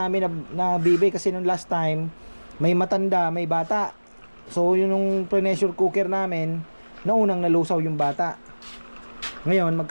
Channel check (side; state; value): both; inverted; correlation -1.00